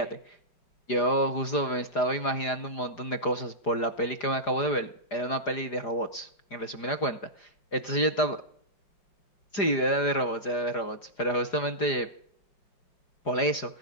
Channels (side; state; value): right; late; 4.9 ms